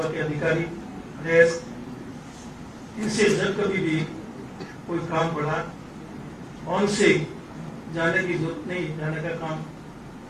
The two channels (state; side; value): identical; both; correlation 1.00